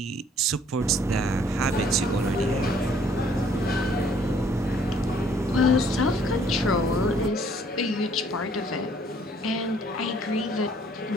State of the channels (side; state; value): both; normal; correlation 0.61